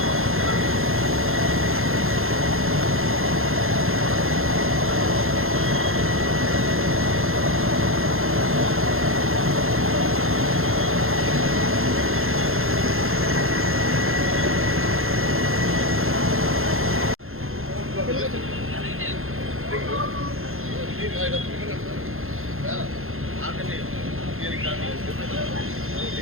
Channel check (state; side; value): late; left; 0.61 ms